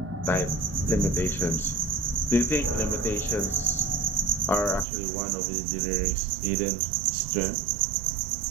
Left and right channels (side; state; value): left; drops out; at 4.9 s